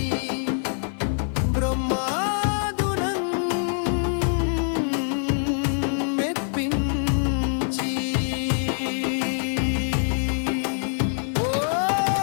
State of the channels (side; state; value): right; silent; 62 dB below the other